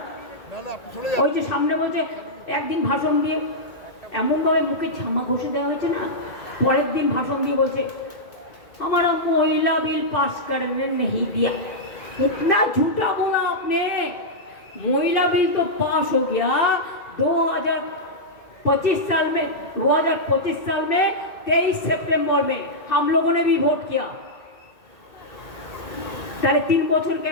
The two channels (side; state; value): right; late; 2.3 ms